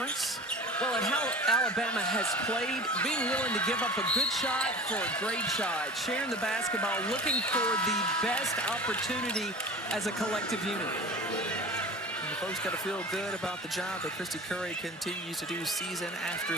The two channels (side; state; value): both; normal; correlation 0.36